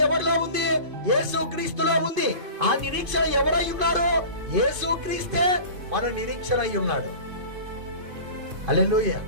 ఎవరిలో ఉంది? యేసుక్రీస్తులో ఉంది. ఆ నిరీక్షణ ఎవరై ఉన్నాడు? యేసుక్రీస్తే మన నిరీక్షణ అయి ఉన్నాడు. హల్లెలూయా.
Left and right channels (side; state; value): left; late; 2.5 ms